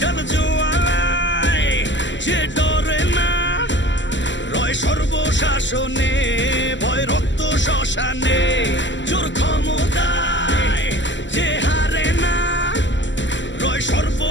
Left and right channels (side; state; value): right; late; 0.54 ms